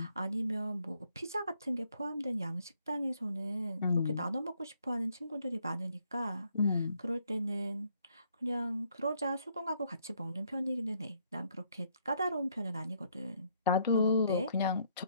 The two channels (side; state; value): both; inverted; correlation -0.70